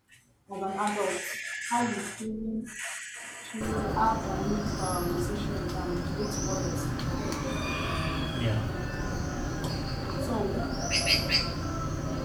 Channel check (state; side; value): identical; both; correlation 1.00